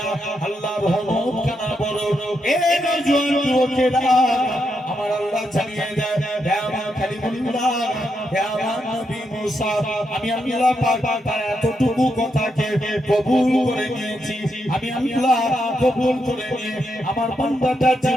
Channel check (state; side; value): normal; both; correlation 0.82